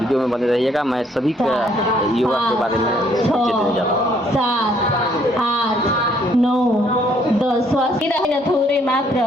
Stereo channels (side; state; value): both; normal; correlation 0.66